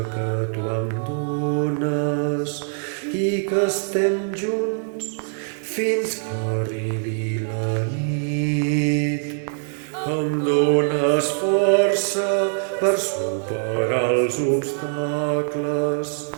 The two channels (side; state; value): left; silent; digital silence